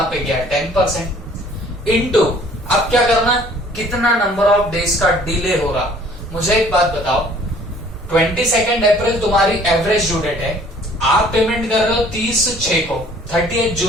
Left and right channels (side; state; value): both; normal; correlation 0.55